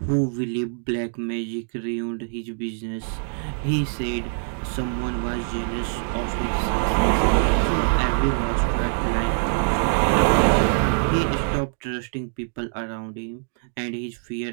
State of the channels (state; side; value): silent; left; digital silence